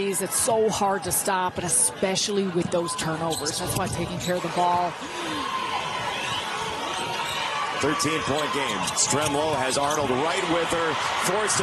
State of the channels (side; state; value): both; identical; correlation 1.00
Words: It's so hard to stop, and especially with those turnovers. That's why taking care of the ball. 13-point game. Stremlow has Arnold right with her. Forced